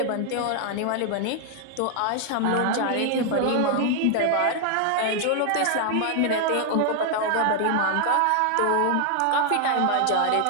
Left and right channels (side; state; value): both; different; correlation 0.00